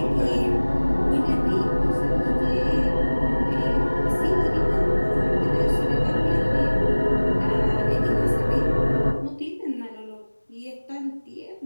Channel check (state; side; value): inverted; both; correlation -1.00